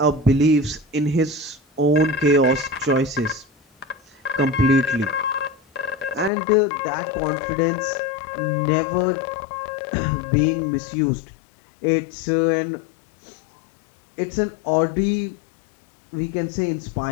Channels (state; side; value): drops out; right; at 6.3 s